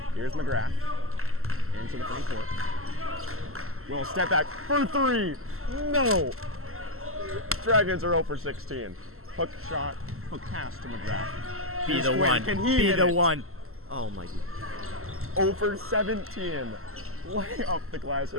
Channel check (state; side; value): late; left; 0.62 ms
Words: Here's McGrath into the front court. Will step back for 3. No! Dragons are 0 for 16. Hook shot, hook pass to McGrath. Here's Quinn. Can he hit it? 1. Oh my God. 0 for 17. Lay off the glass,